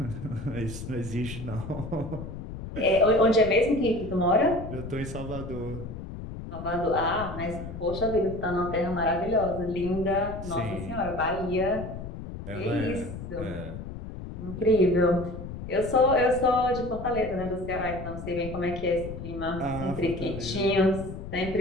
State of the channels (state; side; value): noise; left; rumble, 9 dB below the sound